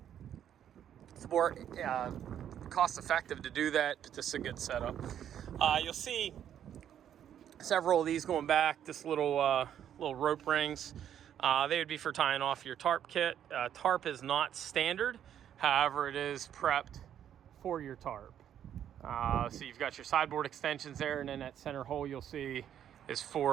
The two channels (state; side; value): quieter; left; 9.9 dB